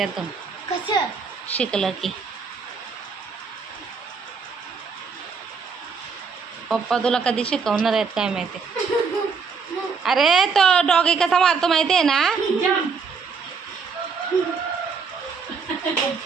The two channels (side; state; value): left; quieter; 5.3 dB